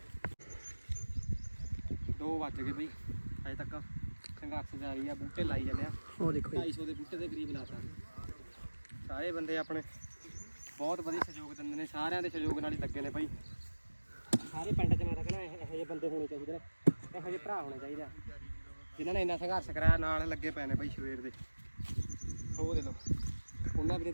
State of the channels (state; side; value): inverted; both; correlation -1.00